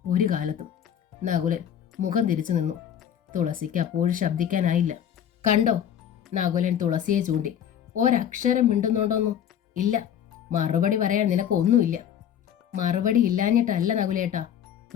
ഒരു കാലത്തും. നകുലൻ മുഖം തിരിച്ചു നിന്നു. തുളസിക്ക് അപ്പോഴും ശബ്ദിക്കാനായില്ല. കണ്ടോ? നകുലൻ തുളസിയെ ചൂണ്ടി. ഒരക്ഷരം മിണ്ടുന്നുണ്ടോന്നു? ഇല്ല. മറുപടി പറയാൻ നിനക്ക് ഒന്നുമില്ല. മറുപടി ഇല്ലാഞ്ഞിട്ടല്ല നകുലേട്ടാ.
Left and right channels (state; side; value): quieter; right; 9.4 dB